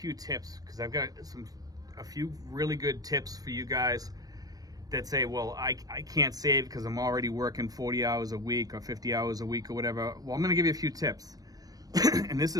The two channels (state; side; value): late; left; 0.18 ms